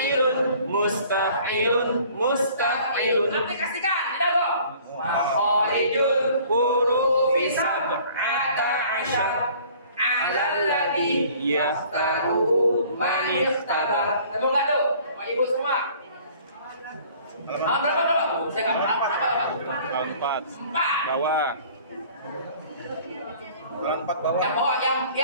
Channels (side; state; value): both; inverted; correlation -0.52